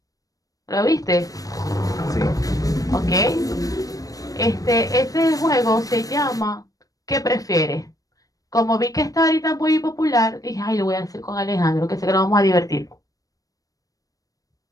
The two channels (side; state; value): right; late; 0.17 ms